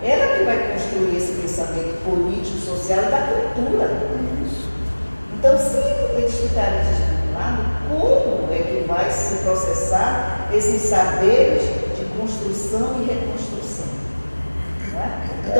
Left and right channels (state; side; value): inverted; both; correlation -1.00